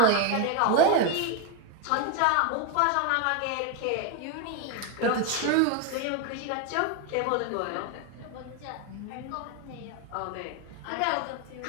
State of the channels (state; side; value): different; both; correlation 0.01